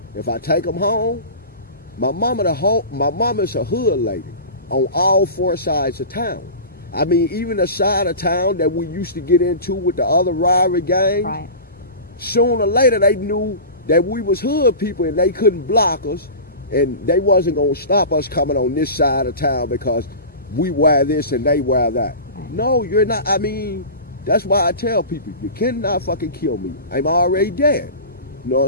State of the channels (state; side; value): inverted; both; correlation -0.31